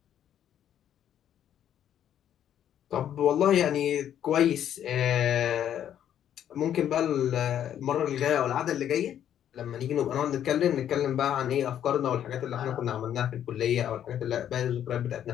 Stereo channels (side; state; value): right; quieter; 10.2 dB